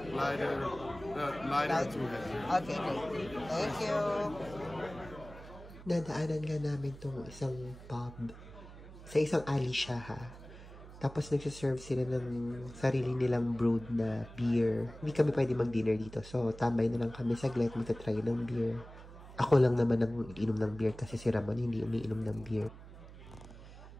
to heavy. Okay, great. Thank you. Nadaanan nga namin tong isang pub. Sa isang alley siya ha. Tapos nagsiserve sila ng sarili nilang brewed na beer. Hindi kami pwede mag-dinner dito. So, tambay na lang kami saglit magta-try ng beer. Ako lang naman ang inom ng beer kasi si Ramon hindi umiinom ng beer.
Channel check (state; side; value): noise; right; hum, 16 dB below the sound